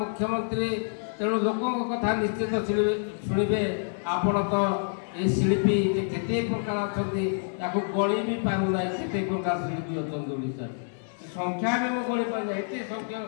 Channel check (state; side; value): silent; right; digital silence